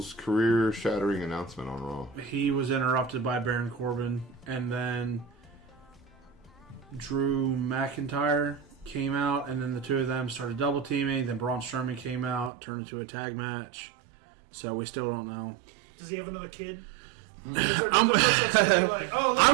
career-shattering announcement on Raw? He was interrupted by Baron Corbin, and then Drew McIntyre came out, and then the two of them started double teaming. Then Braun Strowman came out, turned into a tag match. So we still don't know. Does he have another kid? Is there another person that's gonna be like, oh, look,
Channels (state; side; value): drops out; left; at 12.5 s